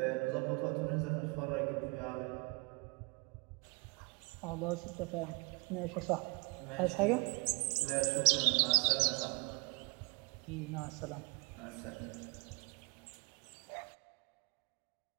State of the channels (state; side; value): quieter; left; 30.2 dB